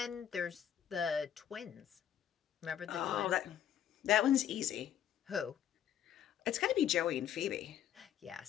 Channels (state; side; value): quieter; right; 10.0 dB